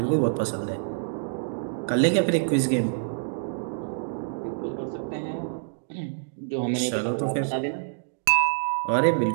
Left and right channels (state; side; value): silent; left; digital silence